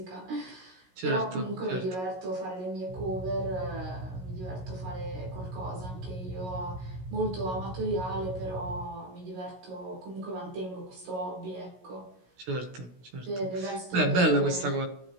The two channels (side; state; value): left; late; 16 ms